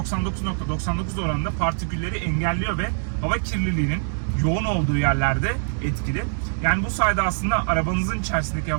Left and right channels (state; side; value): silent; left; digital silence